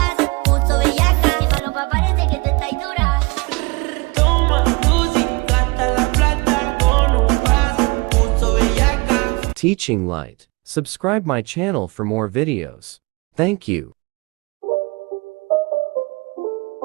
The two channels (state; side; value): quieter; left; 26.7 dB